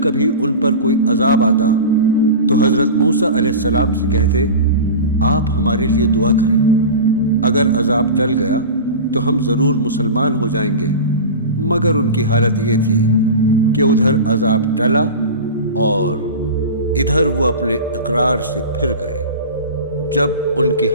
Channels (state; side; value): inverted; both; correlation -0.30